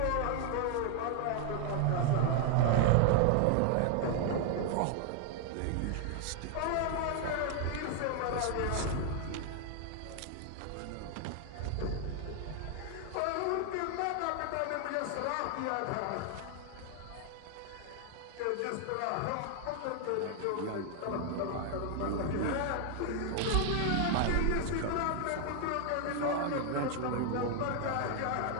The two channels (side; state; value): both; different; correlation 0.00